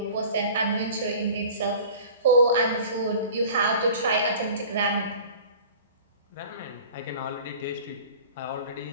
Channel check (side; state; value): both; inverted; correlation -0.43